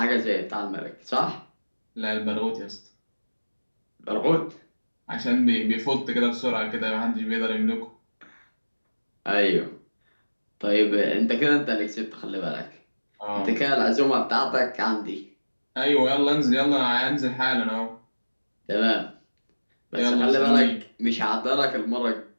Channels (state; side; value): inverted; both; correlation -1.00